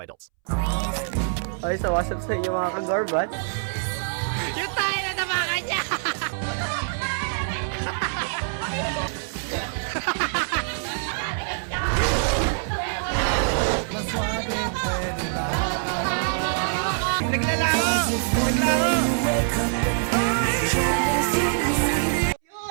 adults. Okay, so what's up sa inyo mga kagorbat? Yung tayo na nabakan niya! Naglalaro!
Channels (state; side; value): silent; left; 62 dB below the other